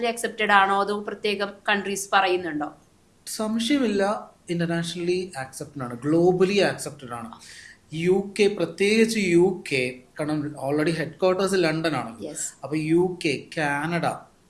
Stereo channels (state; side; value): identical; both; correlation 1.00